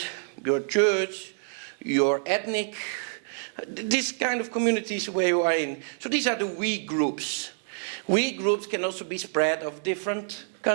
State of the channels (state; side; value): silent; left; digital silence